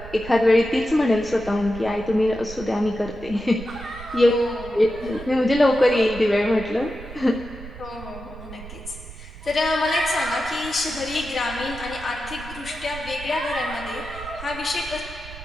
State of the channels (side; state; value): right; noise; rumble, 14 dB below the sound